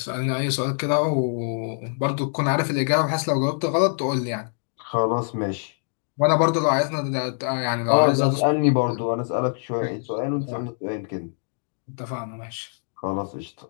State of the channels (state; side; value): silent; right; digital silence